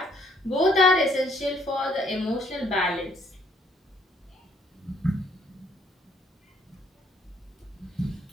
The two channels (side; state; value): both; normal; correlation 0.66